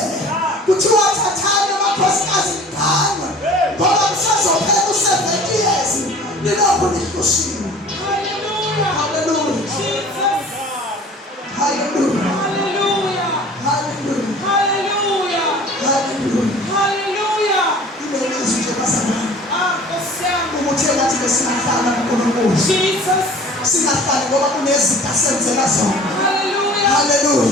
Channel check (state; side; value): normal; both; correlation 0.46